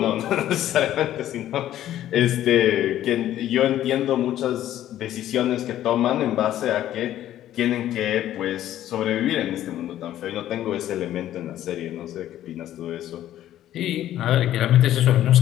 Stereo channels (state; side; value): quieter; right; 12.5 dB